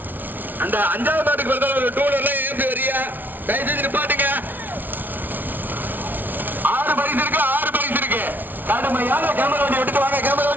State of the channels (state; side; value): late; left; 0.086 ms